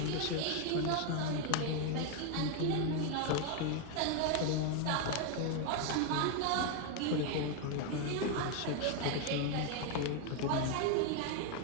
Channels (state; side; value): different; both; correlation 0.01